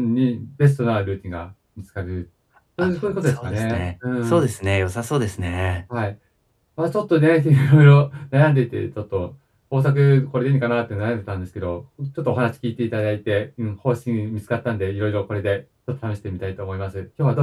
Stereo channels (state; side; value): identical; both; correlation 1.00